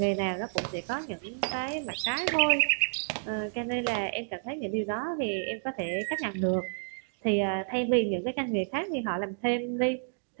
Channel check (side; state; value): left; silent; digital silence